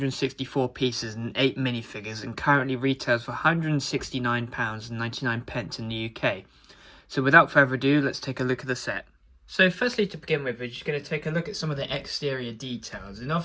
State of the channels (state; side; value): identical; both; correlation 1.00